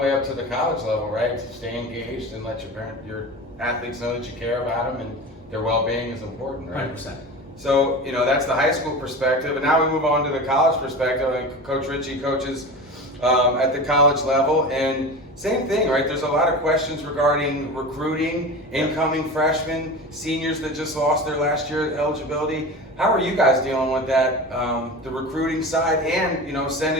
way up to the college level, right? To stay engaged and let your athletes know that you care about them and their well-being is important, right? 100%. So, that's the high school perspective. And now we move on to the college perspective. I think Coach Richie coaches at the college level. And same thing, right? There's a lot of questions regarding recruiting, incoming freshmen, seniors that just lost their last year eligibility. How are you guys dealing with that, the recruiting side and,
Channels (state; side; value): normal; both; correlation 0.30